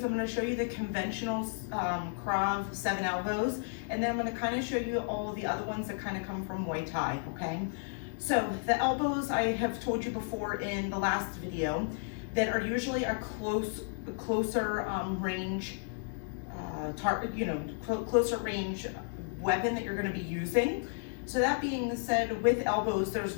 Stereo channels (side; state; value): right; silent; digital silence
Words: I'm going to show you the conventional Krav 7 elbows, and then I'm going to kind of show you all of the other ones that kind of come from Muay Thai, okay? So the elbows, I have told you before in the last video, that are usually a closer range, closer range weapon that you're going to be using. So that being said, with elbows, there's